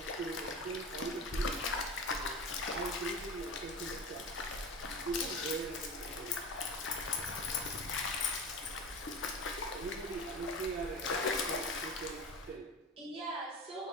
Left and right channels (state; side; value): normal; both; correlation 0.31